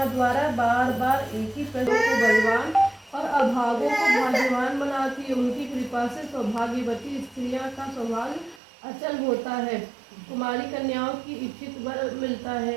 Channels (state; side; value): drops out; left; at 8.6 s